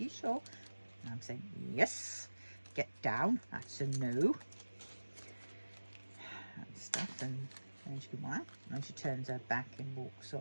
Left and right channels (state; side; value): inverted; both; correlation -1.00